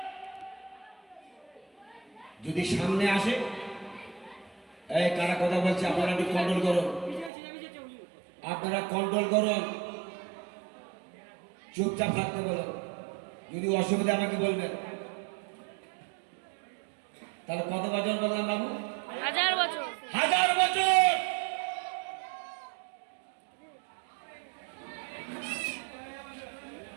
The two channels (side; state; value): left; drops out; at 7.3 s